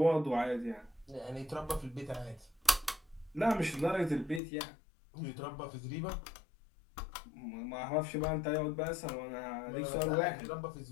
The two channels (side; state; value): right; drops out; at 4.4 s